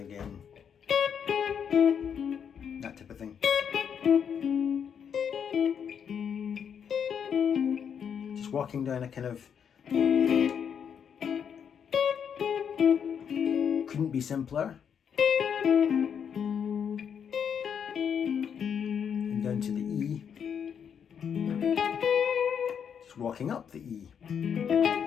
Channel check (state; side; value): quieter; right; 7.7 dB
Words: That type of thing. Just walking down a kind of, couldn't be simpler. And down to the E. Just walking up the E.